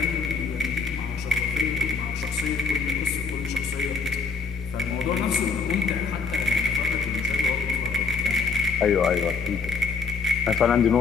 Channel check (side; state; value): right; quieter; 4.9 dB